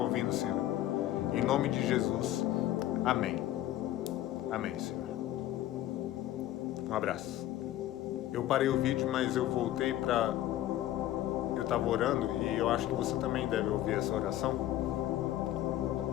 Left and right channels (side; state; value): right; quieter; 13.6 dB